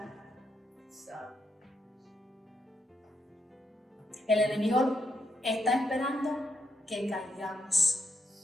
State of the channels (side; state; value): both; normal; correlation 0.79